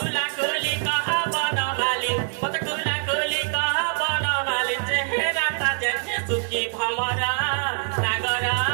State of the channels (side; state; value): left; silent; 62 dB below the other